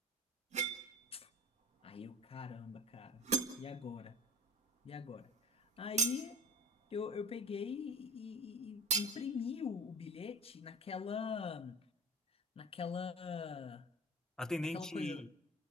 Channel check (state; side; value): normal; both; correlation 0.37